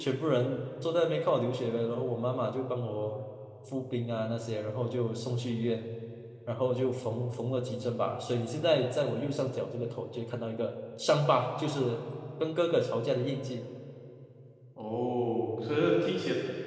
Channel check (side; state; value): both; identical; correlation 1.00